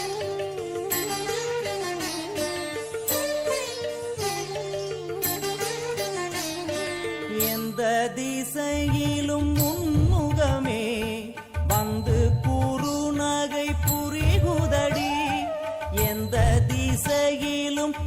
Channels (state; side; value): identical; both; correlation 1.00